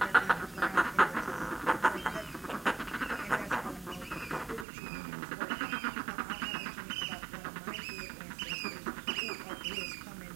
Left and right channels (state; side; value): drops out; left; at 4.7 s